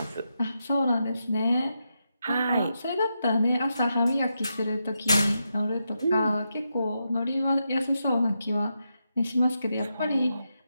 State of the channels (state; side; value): inverted; both; correlation -0.85